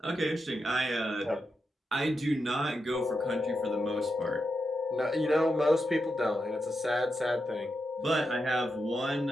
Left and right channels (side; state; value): both; normal; correlation 0.86